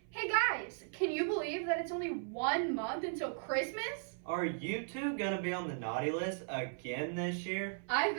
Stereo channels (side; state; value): left; silent; 53 dB below the other